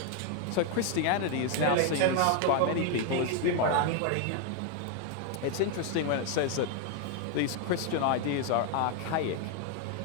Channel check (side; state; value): both; different; correlation 0.01